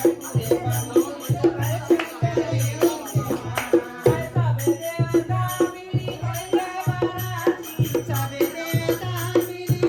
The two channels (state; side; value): identical; both; correlation 1.00